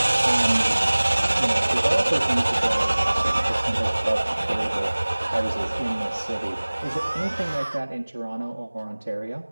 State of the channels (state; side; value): inverted; both; correlation -1.00